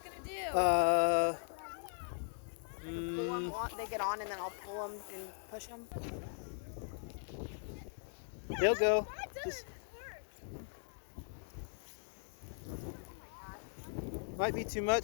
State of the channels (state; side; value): silent; right; digital silence